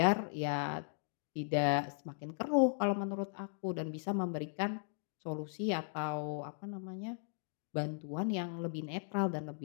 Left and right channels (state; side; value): silent; right; digital silence